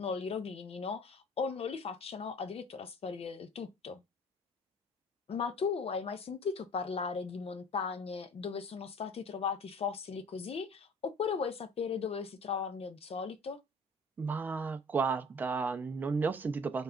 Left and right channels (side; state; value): both; normal; correlation 0.47